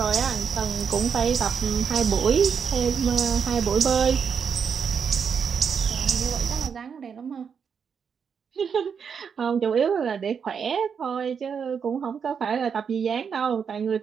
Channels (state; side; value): quieter; left; 6.7 dB